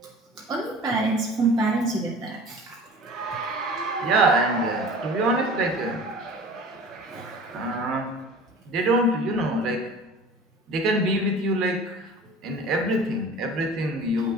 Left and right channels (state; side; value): normal; both; correlation 0.42